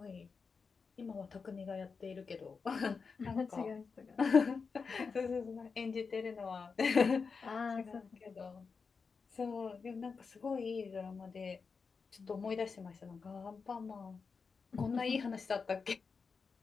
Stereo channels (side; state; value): right; quieter; 5.1 dB